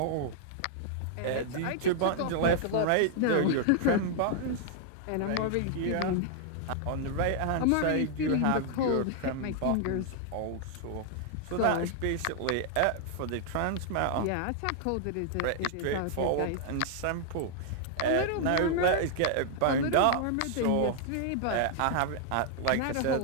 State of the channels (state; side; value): different; both; correlation 0.00